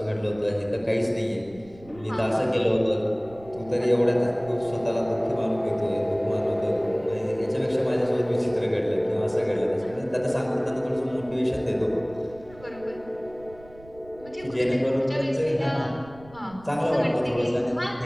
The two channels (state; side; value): noise; right; rumble, 22 dB below the sound